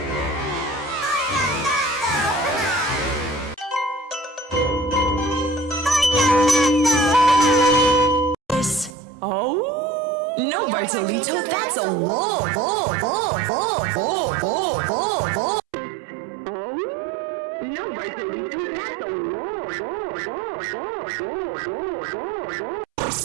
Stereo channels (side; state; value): left; drops out; at 9.0 s